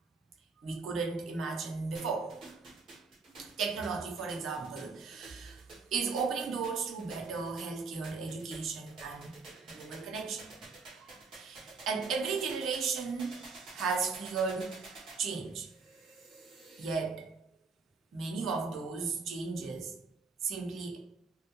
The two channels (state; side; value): quieter; left; 4.5 dB